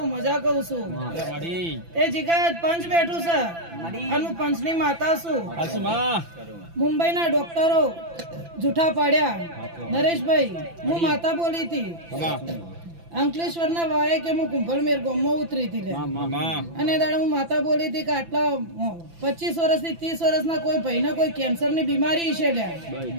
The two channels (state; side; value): late; left; 5.9 ms